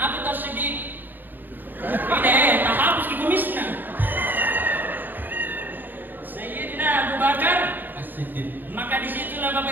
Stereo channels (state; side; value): late; left; 0.089 ms